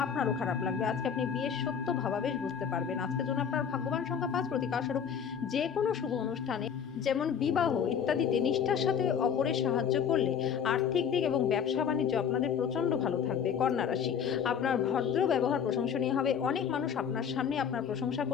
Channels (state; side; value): quieter; right; 7.6 dB